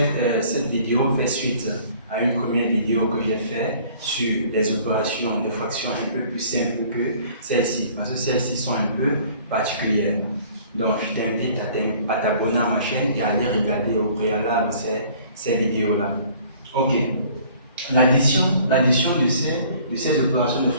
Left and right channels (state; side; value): inverted; both; correlation -0.54